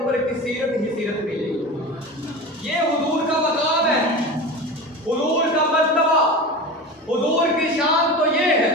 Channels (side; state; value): both; normal; correlation 0.29